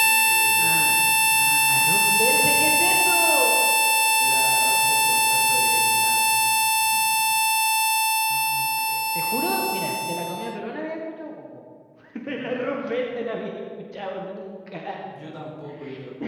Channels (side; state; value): both; identical; correlation 1.00